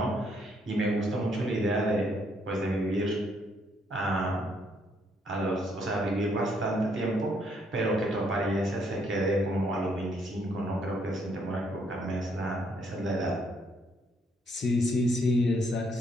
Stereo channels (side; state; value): both; normal; correlation 0.71